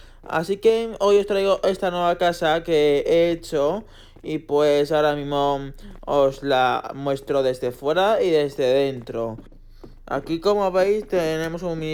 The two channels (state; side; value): identical; both; correlation 1.00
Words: Así que hoy os traigo esta nueva casa que he hecho y pues ahora mismo os la muestro desde fuera y desde dentro. Aquí, como veis, tenemos un